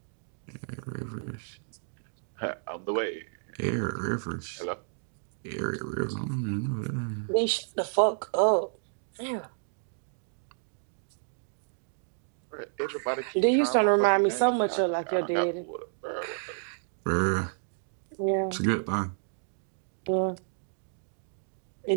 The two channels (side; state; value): left; silent; digital silence